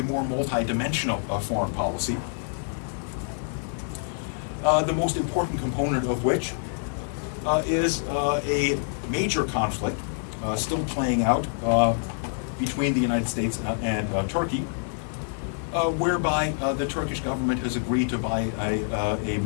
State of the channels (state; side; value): silent; right; 61 dB below the other